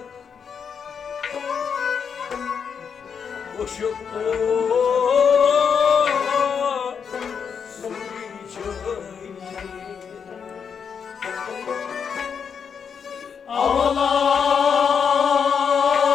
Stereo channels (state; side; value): quieter; right; 6.8 dB